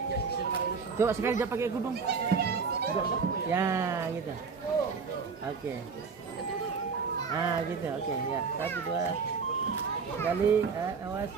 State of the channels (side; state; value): left; quieter; 5.4 dB